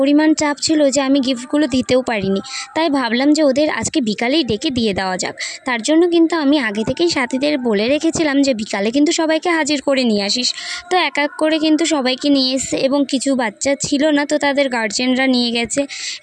চাপ ছিল যে আমি গিফটগুলো দিতেও পারিনি। তাই ভাবলাম যে ওদের আজকে বিকালেই ডেকে দিয়ে দেওয়া যাক। তার জন্য কিন্তু আমি আগে থেকেই সাথীদের বলে রেখেছিলাম যে বিকালে কিন্তু সবাইকে হাজির করে নিয়ে আসিস। তো এক এক করে কিন্তু সবাইকে নিয়ে এসছে এবং কিছু বাচ্চা ছিল না তো তাদের গার্জেনরা নিয়ে গেছে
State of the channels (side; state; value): both; identical; correlation 1.00